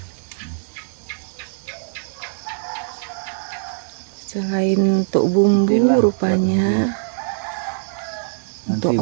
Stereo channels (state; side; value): silent; left; digital silence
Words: Selain untuk bumbu rupanya untuk